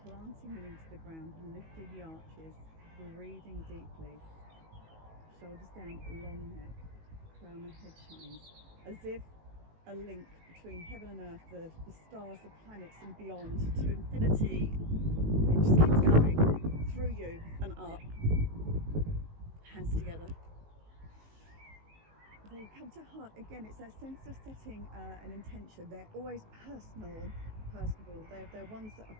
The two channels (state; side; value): late; left; 19 ms